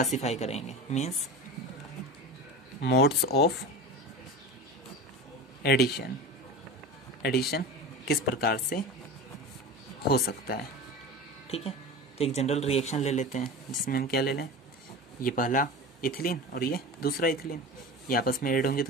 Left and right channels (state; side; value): normal; both; correlation 0.31